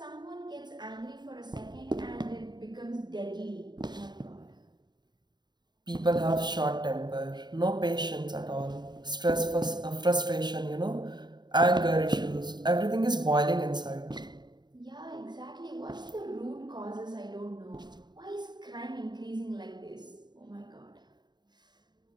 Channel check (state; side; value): late; left; 0.21 ms